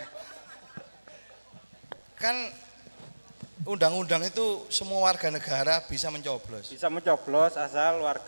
Kan undang-undang itu semua warga negara bisa mencoblos. Bisa mencoblos asal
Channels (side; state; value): both; inverted; correlation -1.00